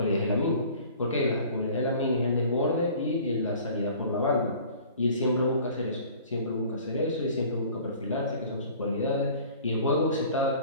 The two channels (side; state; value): both; inverted; correlation -0.48